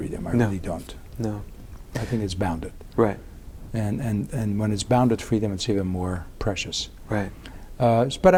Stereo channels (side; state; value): both; identical; correlation 1.00